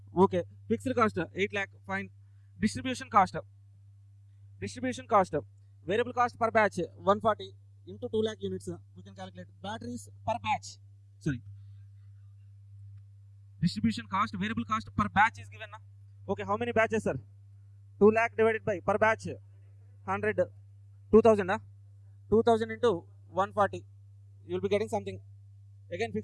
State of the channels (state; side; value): identical; both; correlation 1.00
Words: Okay. Fixed cost 8 lakh. Fine. Distribution cost. Distribution cost, variable cost per batch 140 into 2 lakh units. We can calculate batteries per batch. Sorry. Distribution cost, variable cost per batch is given. Okay, how many batches, sir? 2 lakh divided by per batch 100, 2000. 2000 into 140. You will be getting something. Again,